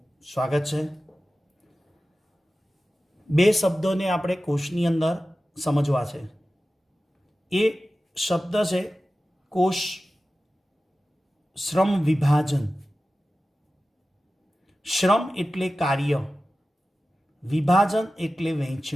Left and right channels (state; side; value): normal; both; correlation 0.95